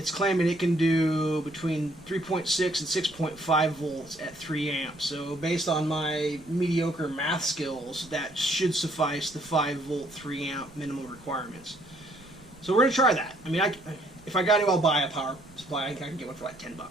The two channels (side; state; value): right; noise; rumble, 25 dB below the sound